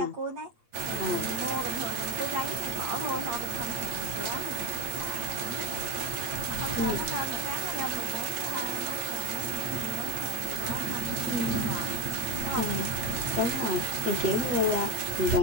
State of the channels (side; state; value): left; late; 8.6 ms